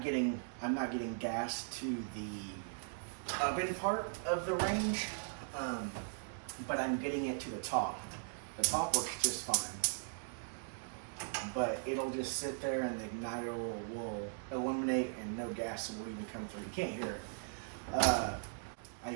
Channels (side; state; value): left; silent; digital silence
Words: getting gas to the oven part of the range, but I'm getting it to the top. The top works just fine, but it'll just sit there and the igniter will illuminate and no gas will even come through. You can't hear it. I